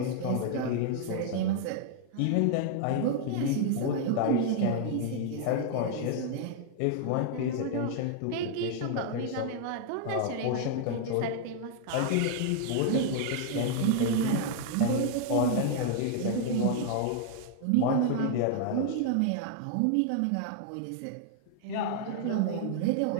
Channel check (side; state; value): both; different; correlation 0.00